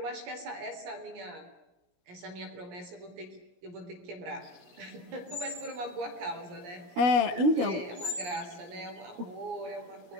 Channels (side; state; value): left; late; 17 ms